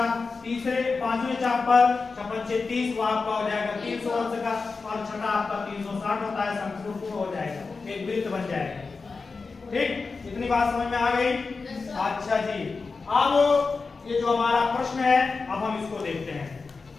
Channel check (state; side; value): quieter; right; 4.4 dB